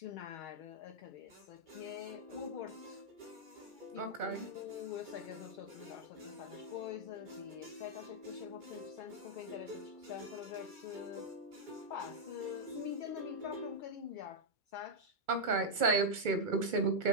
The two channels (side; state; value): left; late; 2.3 ms